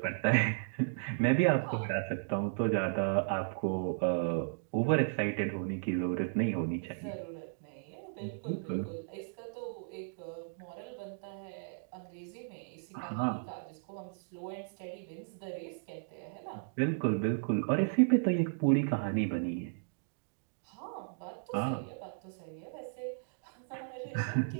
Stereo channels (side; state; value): left; silent; digital silence